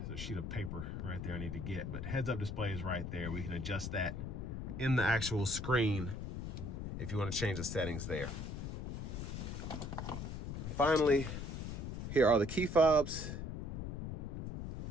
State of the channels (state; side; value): noise; left; rumble, 5 dB below the sound